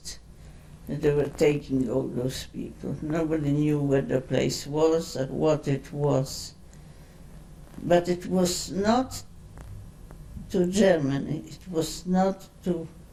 They were taking all those people. Nobody knew where the place was or what it was. But it was not to Germany, it was not to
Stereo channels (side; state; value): both; identical; correlation 1.00